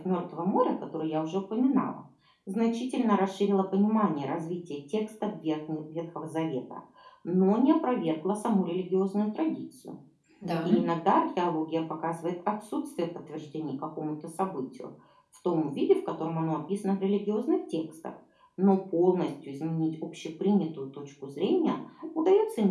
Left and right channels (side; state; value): both; identical; correlation 1.00